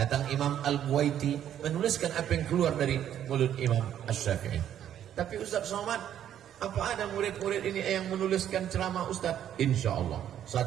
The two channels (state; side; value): quieter; left; 10.4 dB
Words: Imam Al-Buwaiti, menuliskan apa yang keluar dari mulut Imam Asy-Syafi'i. Tapi Ustaz Somad, apa ada murid-murid ini yang menuliskan ceramah Ustaz? Insya Allah